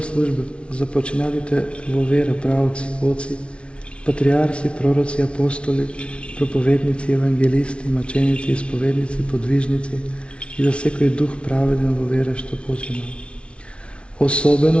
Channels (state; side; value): late; right; 0.059 ms